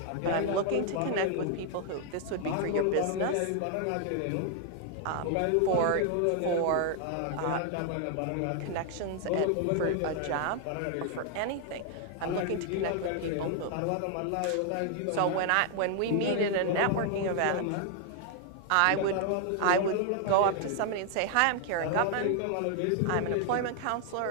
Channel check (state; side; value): different; both; correlation 0.00